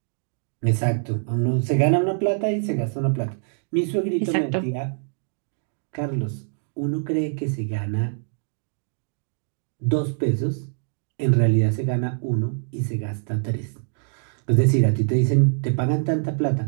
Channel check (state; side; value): silent; left; digital silence